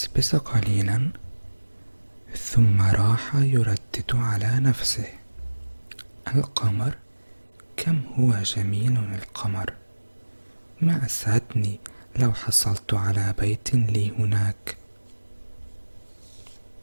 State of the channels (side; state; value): both; inverted; correlation -1.00